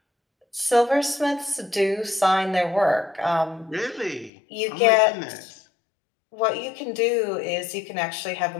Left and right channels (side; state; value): right; drops out; at 4.3 s